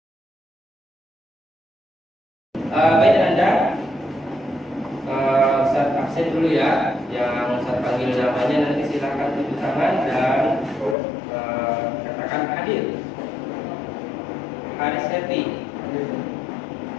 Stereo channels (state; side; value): drops out; right; at 11.0 s